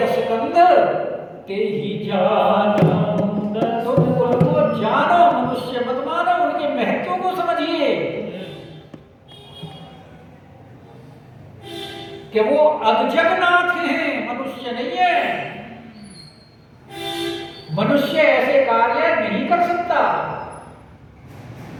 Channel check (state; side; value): identical; both; correlation 1.00